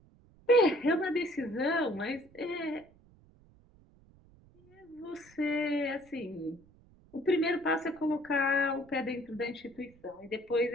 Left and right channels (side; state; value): right; noise; rumble, 27 dB below the sound